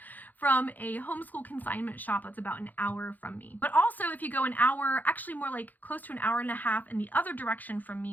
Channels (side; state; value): right; late; 0.083 ms